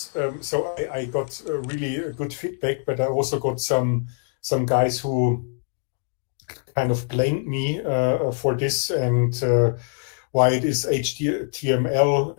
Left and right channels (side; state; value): right; silent; 63 dB below the other